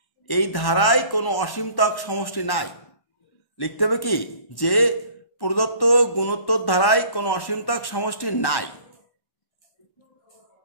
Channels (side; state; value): right; late; 1.1 ms